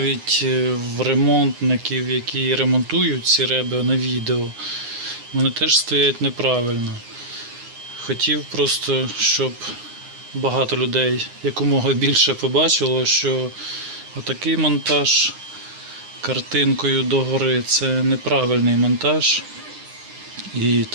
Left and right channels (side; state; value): left; late; 9.7 ms